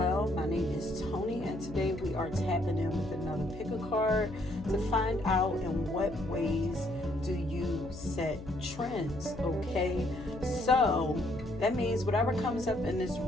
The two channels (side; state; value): left; noise; hum, 13 dB below the sound